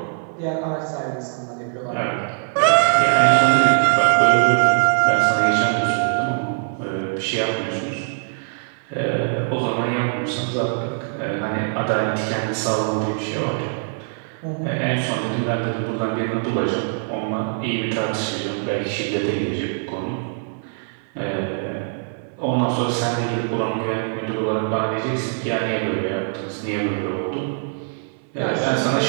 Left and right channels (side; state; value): left; silent; 60 dB below the other